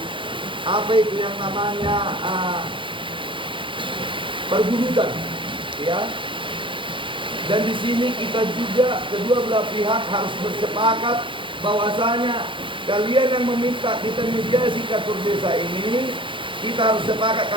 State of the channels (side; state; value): left; late; 0.24 ms